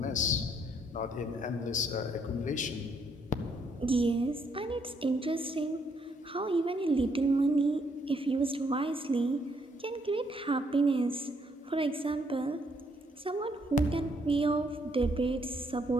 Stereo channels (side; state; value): both; normal; correlation 0.71